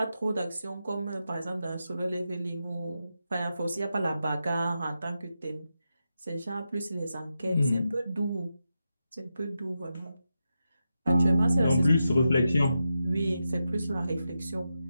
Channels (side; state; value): both; inverted; correlation -0.88